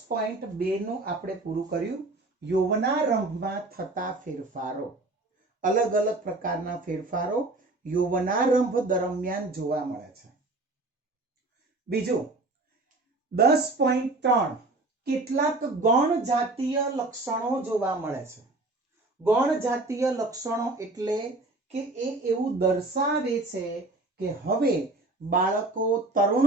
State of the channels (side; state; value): left; quieter; 3.0 dB